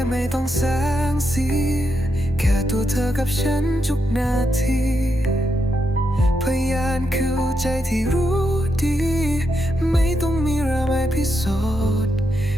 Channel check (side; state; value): both; normal; correlation 0.83